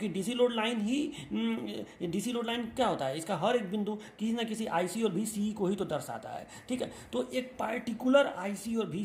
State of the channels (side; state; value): both; identical; correlation 1.00